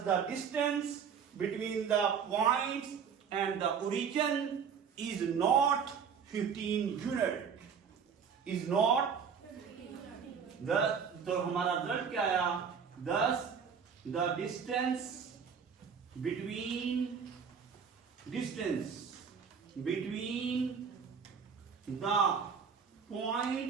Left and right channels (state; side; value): quieter; left; 6.7 dB